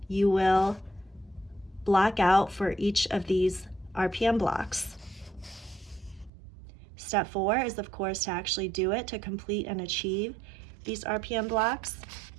you will block out for each of these RPM blocks. Step 4 is, of course, to actually do it, to complete and achieve these RPM blocks.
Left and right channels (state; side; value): drops out; left; at 6.3 s